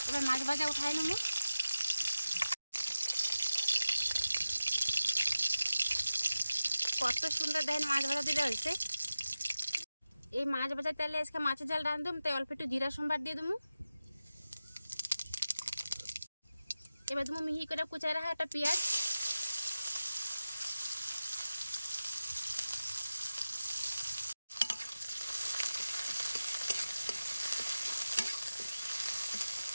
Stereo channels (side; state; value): both; inverted; correlation -0.95